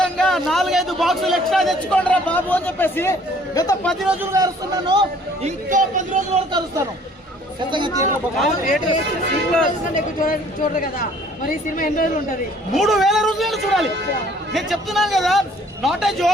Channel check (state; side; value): normal; both; correlation 0.57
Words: 4-5 బాక్సులు ఎక్స్ట్రా తెచ్చుకోండి రా బాబు అని చెప్పేసి గత 10 రోజులుగా అరుస్తున్నాను. ఇంకో 10 రోజుల వరకు అరుస్తాను. చూడరు కదా మరి ఈ సినిమా ఎన్ని రోజులు ఉంటది? 3000 రోజులు చూడాలి. నేను చెప్తున్నాను కదా, నాట్ ఏ